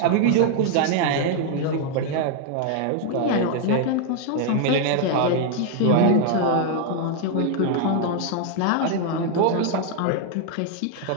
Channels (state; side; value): different; both; correlation 0.00